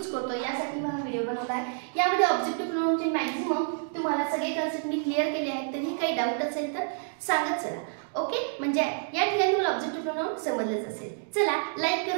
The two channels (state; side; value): silent; left; digital silence